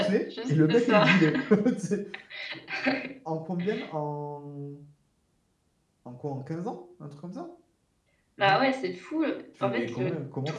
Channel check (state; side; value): identical; both; correlation 1.00